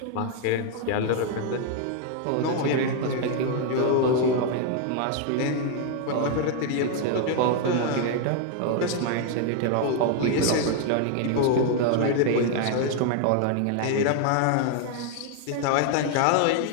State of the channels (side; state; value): both; different; correlation 0.00